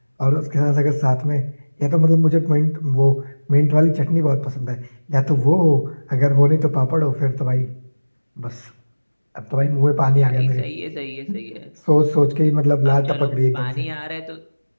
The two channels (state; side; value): inverted; both; correlation -1.00